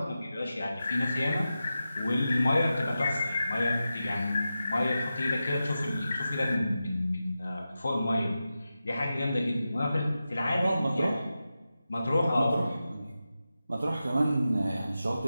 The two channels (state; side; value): inverted; both; correlation -0.92